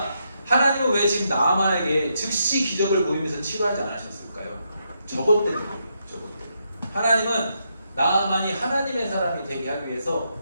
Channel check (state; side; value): inverted; both; correlation -0.80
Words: 하나님은 왜 지금 나아만에게 즉시 기적을 보이면서 치료하지 않으셨을까요? 저것 때문에. 저것 때문에. 하나님은 나아만이 하나님의 사람이 되게 하기 위해서